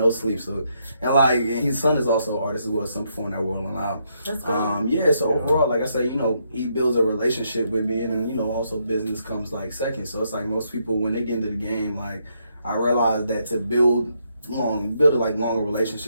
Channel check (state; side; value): inverted; both; correlation -0.77